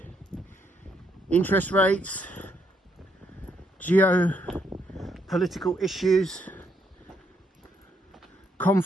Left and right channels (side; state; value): both; normal; correlation 0.74